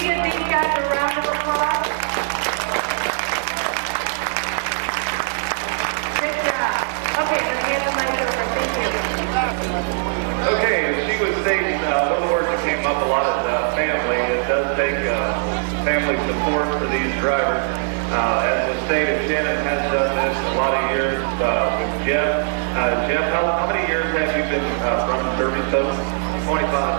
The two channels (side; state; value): left; silent; digital silence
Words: give these guys a round of applause? Good job. Okay, let's hand the mic over. Thank you. Okay, she was stating one word that came up a lot is family. It does take family support for these drivers. As was stated, Shannon has done this a lot of years with Jeff. Jeff, how many years have you been running derby total?